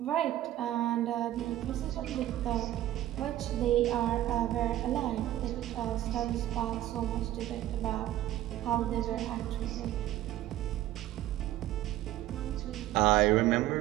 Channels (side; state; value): left; quieter; 13.9 dB